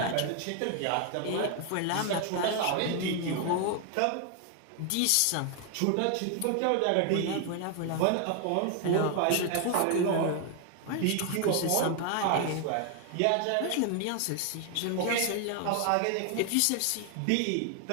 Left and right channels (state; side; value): different; both; correlation 0.00